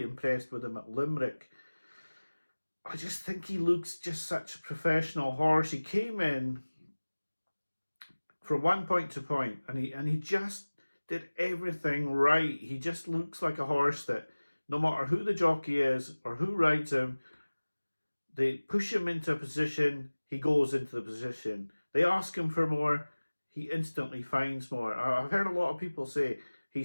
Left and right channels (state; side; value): inverted; both; correlation -1.00